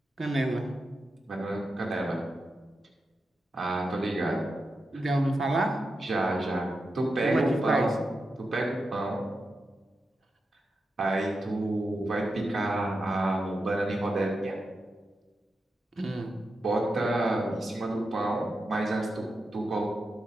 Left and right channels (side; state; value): both; normal; correlation 0.88